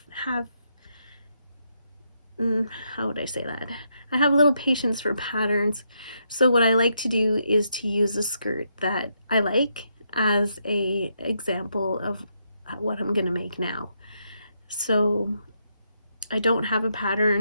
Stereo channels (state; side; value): inverted; both; correlation -0.79